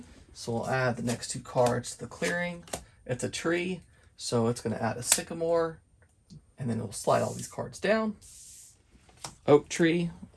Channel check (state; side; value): identical; both; correlation 1.00